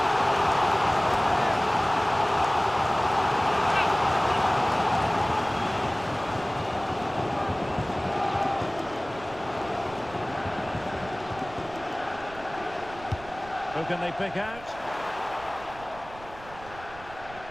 Who can they pick out?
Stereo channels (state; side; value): noise; right; rumble, 18 dB below the sound